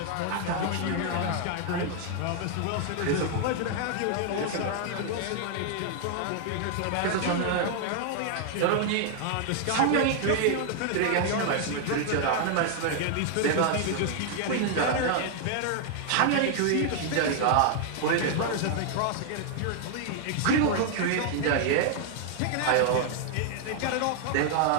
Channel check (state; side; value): different; both; correlation 0.00